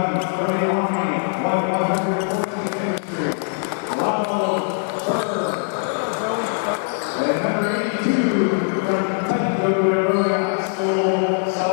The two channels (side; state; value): right; silent; 65 dB below the other